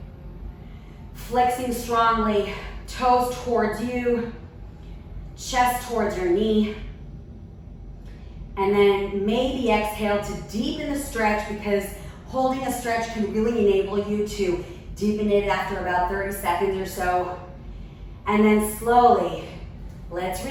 Flexing strongly, toes towards you, chest towards your knee. And then maybe exhale to deepen the stretch, because holding a stretch can really enable you to deepen it after about 30 seconds or so. And then slowly, let's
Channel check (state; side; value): identical; both; correlation 1.00